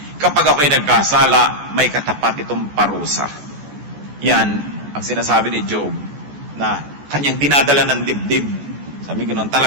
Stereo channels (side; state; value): left; late; 14 ms